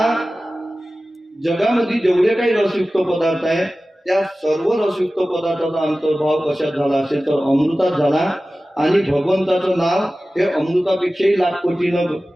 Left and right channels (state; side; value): normal; both; correlation 0.96